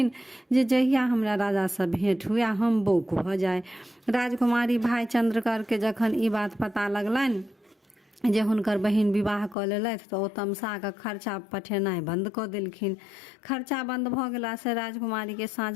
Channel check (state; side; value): drops out; right; at 9.6 s